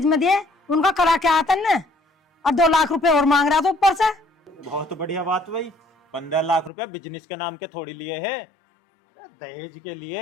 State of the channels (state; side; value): drops out; right; at 6.7 s